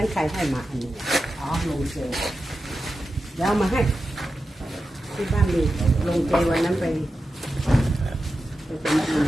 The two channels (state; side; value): normal; both; correlation 0.91